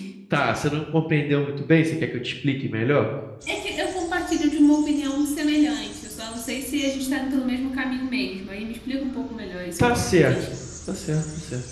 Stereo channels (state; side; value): identical; both; correlation 1.00